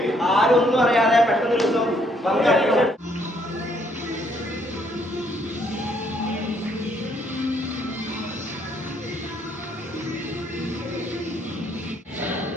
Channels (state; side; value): normal; both; correlation 0.68